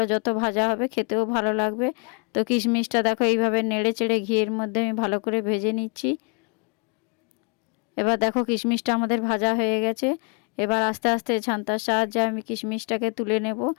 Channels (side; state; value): right; quieter; 36.2 dB